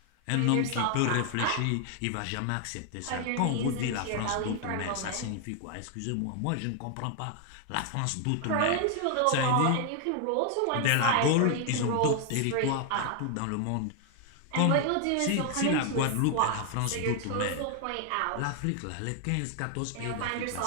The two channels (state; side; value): different; both; correlation 0.00